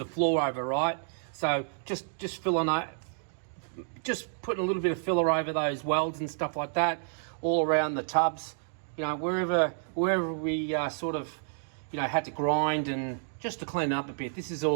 floor over, right? So just filling out, just putting a little bit of filler over those welds and stuff like that, all around the tubs, wherever we sort of, had to grind, and just to clean it up a bit. This is all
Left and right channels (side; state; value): left; silent; digital silence